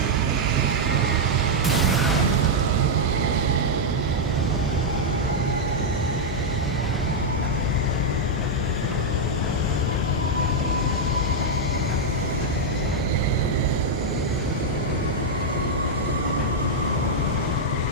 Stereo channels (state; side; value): normal; both; correlation -0.02